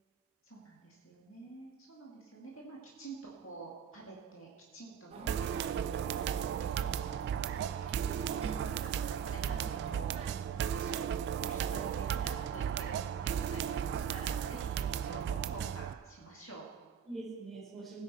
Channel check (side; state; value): left; quieter; 7.9 dB